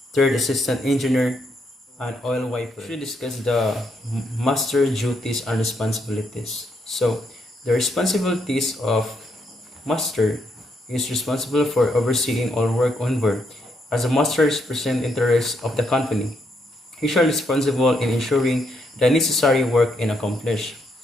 Third Assistant Engineer, and Oil Wiper. We should discuss the master duties and responsibilities. So, the responsibilities of master is responsible for overseeing all work on board. As a master represents interests of the company, he shall be responsible in ensuring the necessary work is accomplished.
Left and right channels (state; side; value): normal; both; correlation 0.76